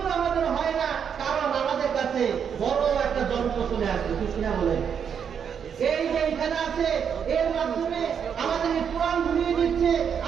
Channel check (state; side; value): quieter; left; 7.5 dB